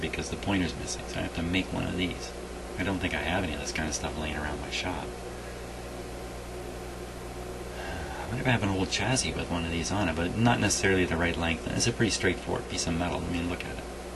the pointer's missing. So I have to make one of these. I don't think I have any of this kind of stuff laying around my shop. I wonder if I have an old chassis with one of these on it, but not necessarily the right length. It's a pretty straightforward piece of metal. I mean, look at it.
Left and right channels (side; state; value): both; identical; correlation 1.00